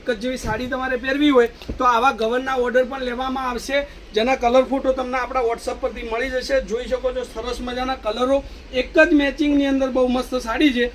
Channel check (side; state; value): both; identical; correlation 1.00